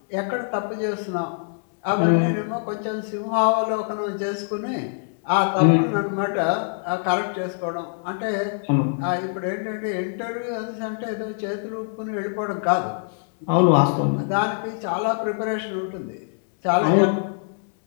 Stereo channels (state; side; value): silent; right; 63 dB below the other